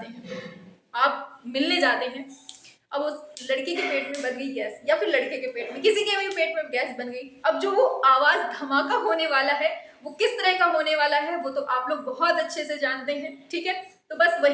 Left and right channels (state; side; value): identical; both; correlation 1.00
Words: हैं, आप मिलने जाते हैं, अब उस लड़की के पेट में बन गई गैस, या फिर लड़के के पेट में, किसी के भी पेट में गैस बन गई। अब जो वो आवाज धमाका होने वाला है वो किस तरह का होने वाला है, वो तो आप लोग बहुत अच्छे से जानते हैं, ठीक है। तो बस